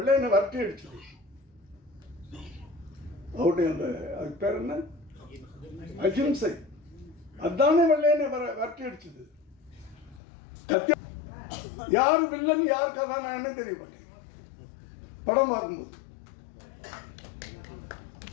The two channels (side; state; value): right; drops out; at 10.2 s